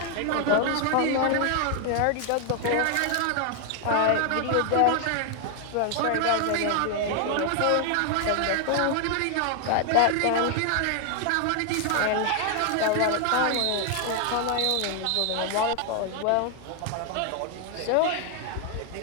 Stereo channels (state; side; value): different; both; correlation 0.00